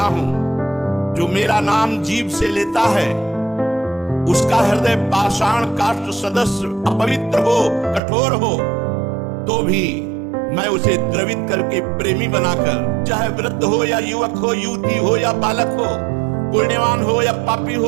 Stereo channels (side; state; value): left; drops out; at 8.0 s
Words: हूं, जो मेरा नाम जीभ से लेता है उसका हृदय पाषाण काष्ठ सदस्य अपवित्र हो, कठोर हो, तो भी मैं उसे द्रवित करके प्रेमी बनाकर, चाहे वृद्ध हो या युवक हो, युवती हो या बालक हो, पुण्यवान हो या पापी